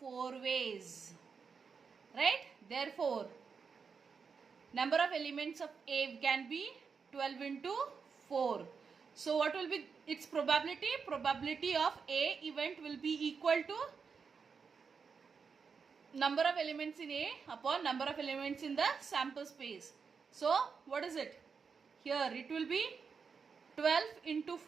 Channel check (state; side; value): quieter; left; 5.7 dB